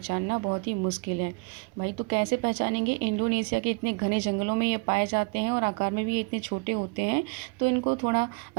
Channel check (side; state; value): left; quieter; 30.0 dB